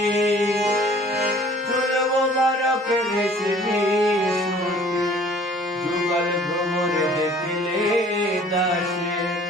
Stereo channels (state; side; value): normal; both; correlation 0.52